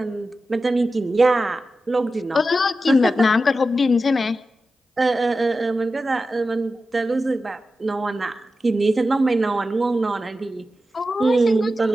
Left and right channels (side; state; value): both; normal; correlation 0.92